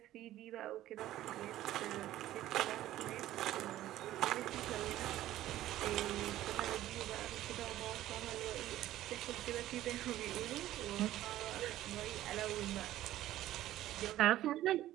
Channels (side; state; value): left; quieter; 14.1 dB